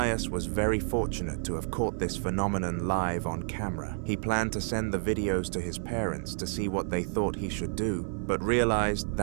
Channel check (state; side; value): silent; left; 58 dB below the other